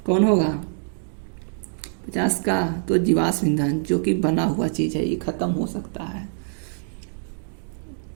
कौन होगा 50 का, तो जीवाश्म ईंधन जो कि बना हुआ चीज है ये खत्म हो सकता है।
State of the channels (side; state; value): left; silent; digital silence